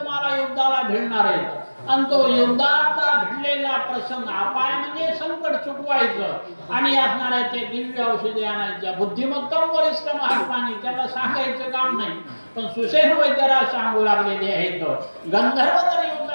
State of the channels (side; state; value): both; inverted; correlation -1.00